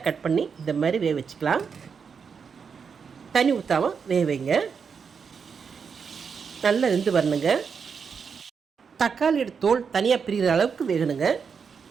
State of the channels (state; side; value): quieter; left; 6.1 dB